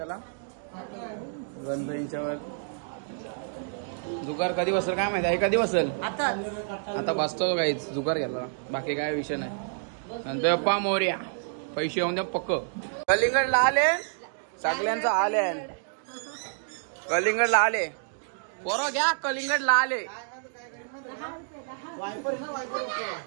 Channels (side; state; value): left; silent; digital silence